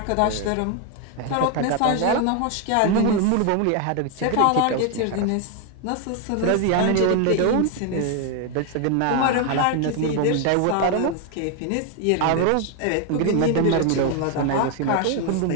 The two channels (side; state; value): both; different; correlation 0.01